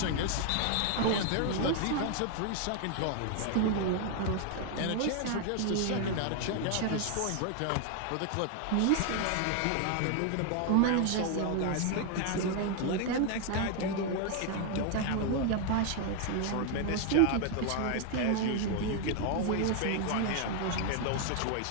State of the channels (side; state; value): both; different; correlation 0.00